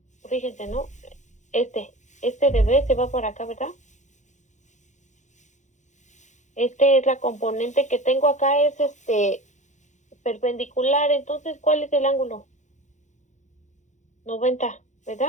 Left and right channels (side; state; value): right; late; 0.35 ms